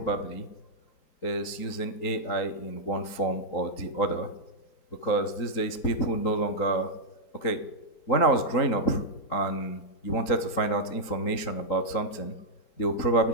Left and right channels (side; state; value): right; late; 3.9 ms